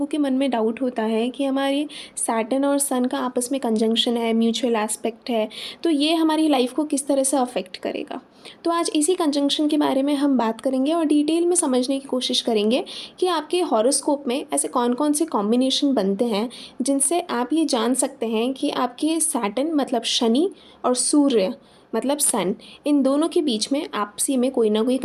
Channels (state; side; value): identical; both; correlation 1.00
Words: के मन में डाउट होता है कि हमारे सैटर्न और सन का आपस में कंजंक्शन है, म्यूचुअल एस्पेक्ट है, तो ये हमारी लाइफ को किस तरह से अफेक्ट करेगा। तो आज इसी कंजंक्शन के बारे में हम बात करेंगे और डिटेल में समझने की कोशिश करेंगे कि आपके हॉरोस्कोप में ऐसे कौन कौन से कॉम्बिनेशन बनते हैं जिनसे आप ये जान सकते हैं कि आपके सैटर्न मतलब शनि और सूर्य मतलब सन, इन दोनों के बीच में आपसी में कोई ना कोई